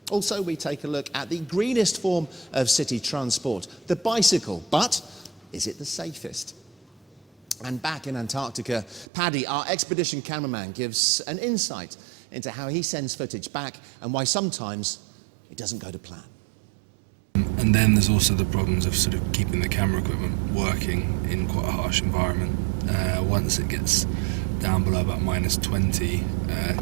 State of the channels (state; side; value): drops out; left; at 9.1 s